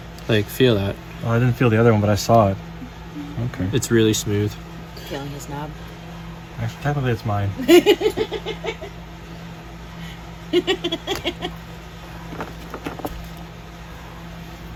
Like, feel that. Oh, I didn't feel the other one, but I saw it. Okay. It's really smooth. Feeling his knob. Actually, technically, it's mine.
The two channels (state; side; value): identical; both; correlation 1.00